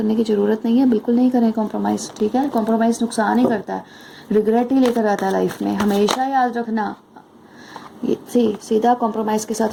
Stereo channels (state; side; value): identical; both; correlation 1.00